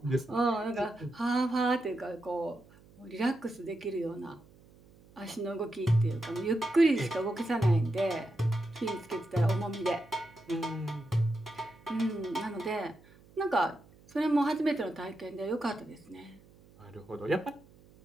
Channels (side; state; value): right; noise; hum, 26 dB below the sound